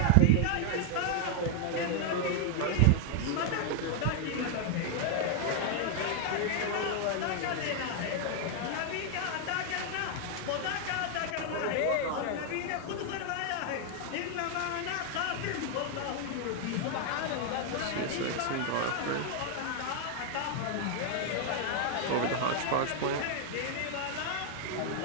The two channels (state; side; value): different; both; correlation 0.00